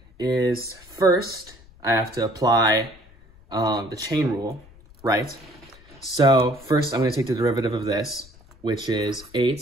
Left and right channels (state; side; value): noise; left; rumble, 24 dB below the sound